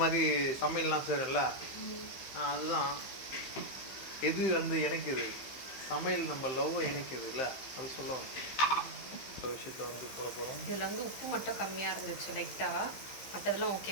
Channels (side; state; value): right; late; 15 ms